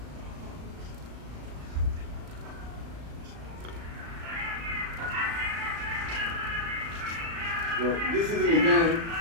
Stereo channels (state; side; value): late; left; 36 ms